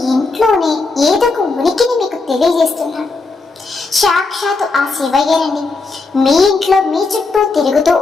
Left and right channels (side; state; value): right; quieter; 3.8 dB